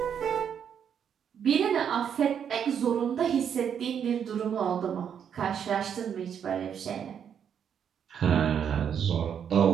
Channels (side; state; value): left; quieter; 8.2 dB